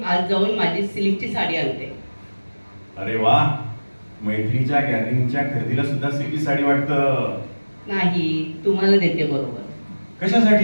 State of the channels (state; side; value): inverted; both; correlation -1.00